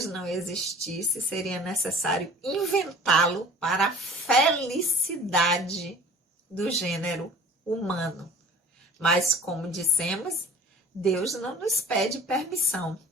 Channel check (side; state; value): both; normal; correlation 0.45